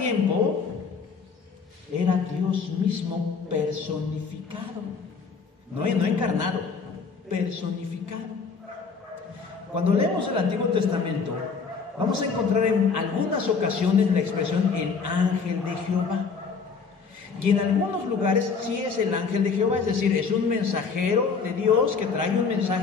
era Dios mismo personificado, no encarnado, personificado. Cuando leemos el Antiguo Testamento, vamos a encontrar en algunas ocasiones la expresión el ángel de Jehová. Y en algunos lugares sí es el ángel de Jehová, es decir, es un mensajero de Dios que trae un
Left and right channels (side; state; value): right; quieter; 5.2 dB